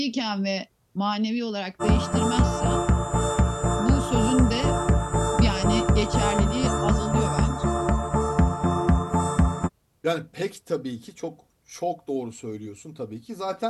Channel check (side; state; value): both; identical; correlation 1.00